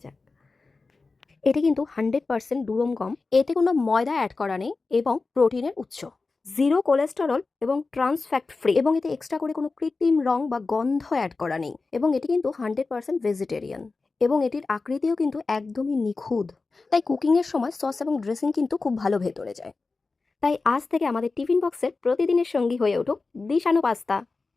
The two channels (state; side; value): quieter; right; 3.9 dB